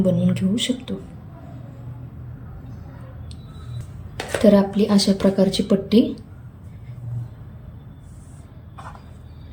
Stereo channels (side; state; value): both; identical; correlation 1.00